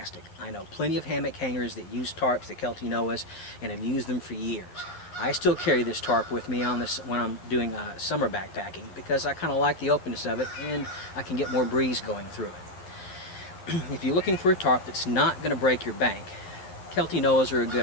I know plenty of hammock hangers that use tarps, the Kelty Noahs, and have used them for years. I still carry this tarp with me on this when I'm doing summer backpacking because I kind of like the openness of it and I can get more breeze going through it. If you're looking for a tarp that's not going to break your bank, Kelty Noahs are a good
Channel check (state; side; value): late; right; 11 ms